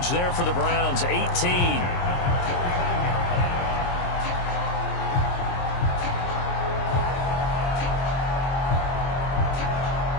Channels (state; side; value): late; right; 23 ms